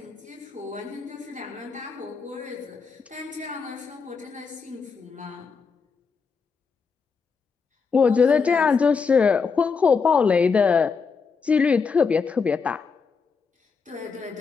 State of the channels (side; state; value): right; quieter; 5.3 dB